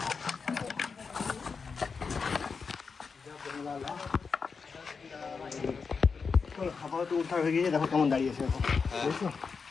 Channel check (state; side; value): quieter; right; 5.2 dB